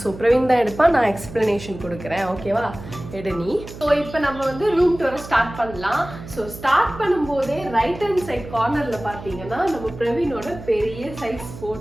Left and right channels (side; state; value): right; noise; hum, 14 dB below the sound